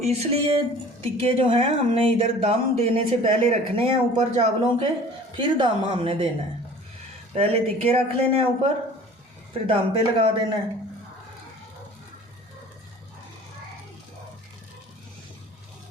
इसलिए टिक्के जो हैं हमने इधर दम देने से पहले रखने हैं ऊपर चावलों के, फिर दम हमने देना है। पहले टिक्के रख लेने हैं ऊपर, फिर दम पे लगा देना है।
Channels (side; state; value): both; normal; correlation 0.46